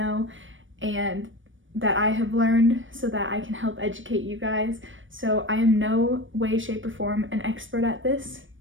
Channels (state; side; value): late; left; 0.56 ms